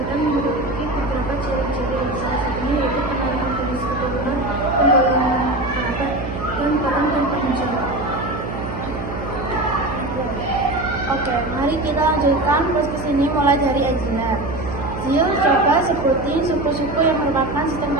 memiliki beberapa ciri-ciri, salah satunya yaitu penarikan garis keturunan, penggolongan kerabat, dan peran dan tanggung jawab. Oke, mari kita lanjutkan podcast ini mulai dari Angela. Zil, coba sebutin suku-suku yang merupakan sistem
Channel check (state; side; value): noise; right; hum, 7 dB below the sound